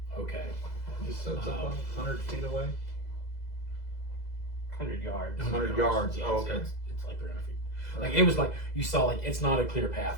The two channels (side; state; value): right; late; 2.0 ms